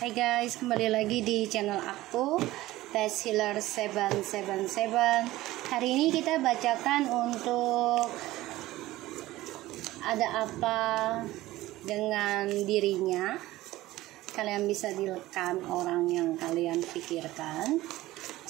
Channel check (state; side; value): quieter; left; 17.0 dB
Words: guys, kembali lagi di channel aku Best Healer 777. Hari ini kita bacakan untuk ada apa dengan dirinya. Kalian bisa direkam orang yang kalian pikirkan.